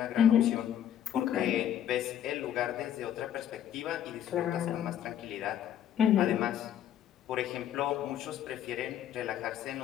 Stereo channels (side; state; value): right; quieter; 10.4 dB